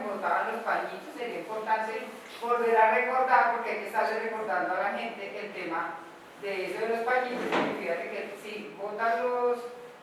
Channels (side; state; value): both; identical; correlation 1.00